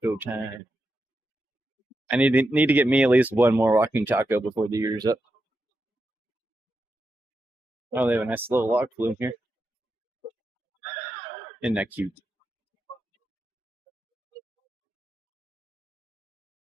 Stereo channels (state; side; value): normal; both; correlation 0.87